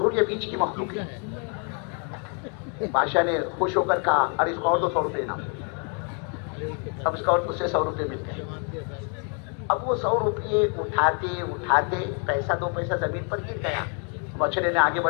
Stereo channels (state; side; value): quieter; right; 39.8 dB